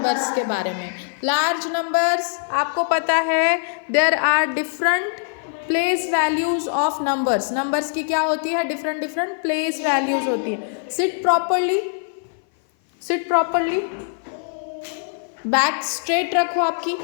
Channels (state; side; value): silent; right; 57 dB below the other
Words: के बारे में. लार्ज नंबर्स आपको पता है there are different place values of numbers. Numbers की क्या होती है? डिफरेंट डिफरेंट प्लेस वैल्यूज होती है. Seat properly. Seat properly. Back straight रखो आपकी.